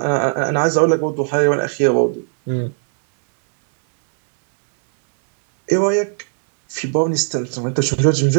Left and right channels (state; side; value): silent; left; digital silence